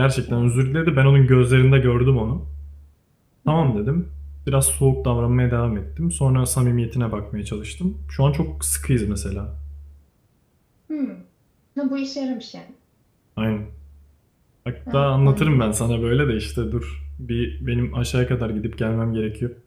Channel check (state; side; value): identical; both; correlation 1.00